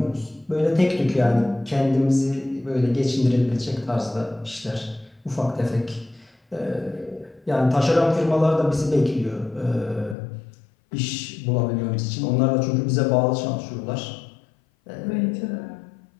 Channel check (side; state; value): right; drops out; at 10.2 s